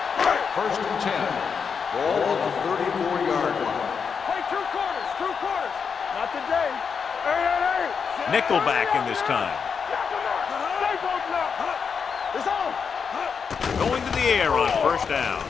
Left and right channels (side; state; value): right; quieter; 6.2 dB